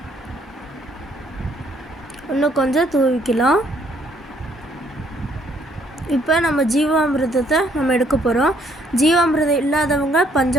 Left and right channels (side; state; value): both; normal; correlation 0.67